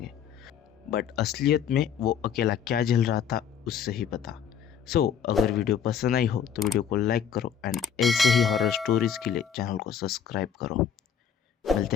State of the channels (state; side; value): quieter; right; 8.0 dB